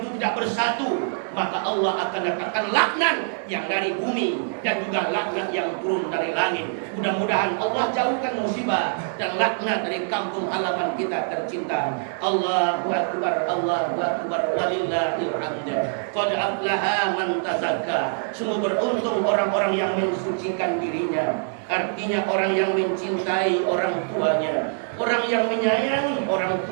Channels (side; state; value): left; silent; 62 dB below the other